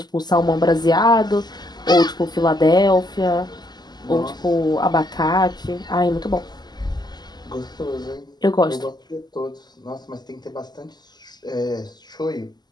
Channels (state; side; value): late; right; 0.20 ms